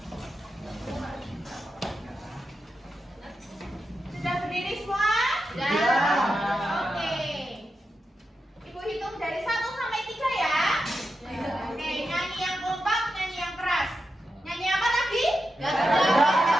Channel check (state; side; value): normal; both; correlation 0.88